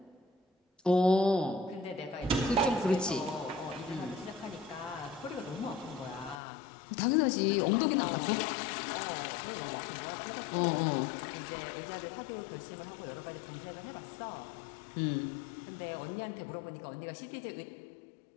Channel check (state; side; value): drops out; right; at 6.4 s